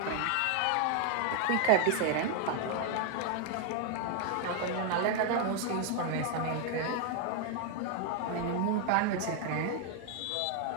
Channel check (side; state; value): both; different; correlation 0.00